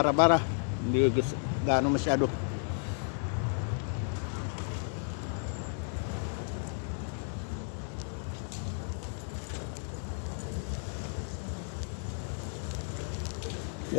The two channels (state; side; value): silent; right; 55 dB below the other